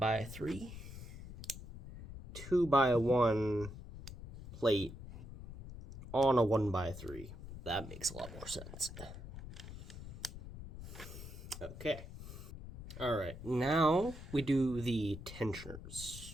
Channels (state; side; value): noise; left; rumble, 12 dB below the sound